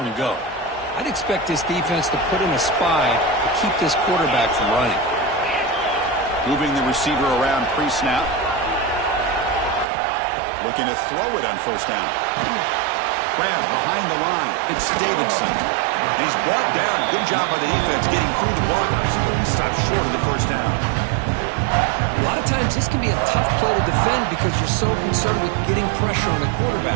and go. I'd expect this defense to put in a spy to keep this quarterback from running. Moving the receiver around pre-snap. Looking to throw it on first down. Grab behind the line. It's Davidson. And he's brought down. Good job by the defense getting through the blockers. He stopped short of the first down. A lot of times this can be a tough play to defend because you're so concerned with getting pressure on the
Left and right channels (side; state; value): left; drops out; at 9.9 s